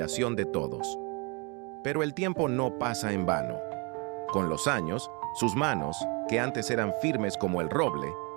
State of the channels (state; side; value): quieter; left; 31.4 dB